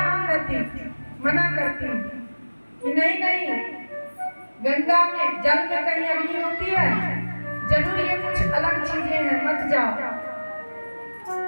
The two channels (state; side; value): inverted; both; correlation -1.00